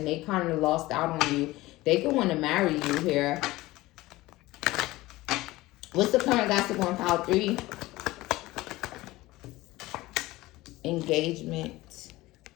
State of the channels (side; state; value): right; quieter; 18.7 dB